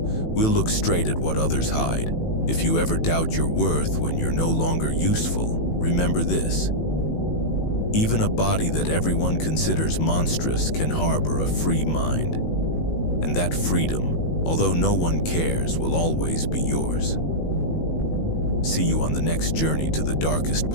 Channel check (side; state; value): right; late; 18 ms